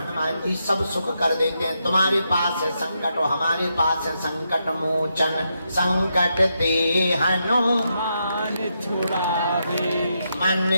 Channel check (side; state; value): both; inverted; correlation -0.82